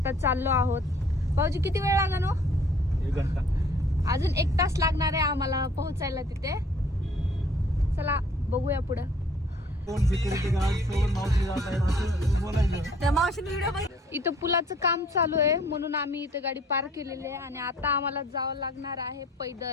चाललो आहोत. भाऊजी किती वेळ लागणार हो? 1 घंटा. अजून 1 तास लागणार आहे आम्हाला पोहोचायला तिथे. चला बघूया पुढं. कोण सिक्युरिटी गार्ड सोबत मावशी जात आहे असं बोलायचं. त्या मावशीने व्हिडिओ बघ. इथं पुलाचं काम चालू आहे म्हणून आम्ही इथे गाडी पार्क केलेली आहे आणि आता आम्हाला जावं लागणार आहे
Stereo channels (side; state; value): both; normal; correlation 0.57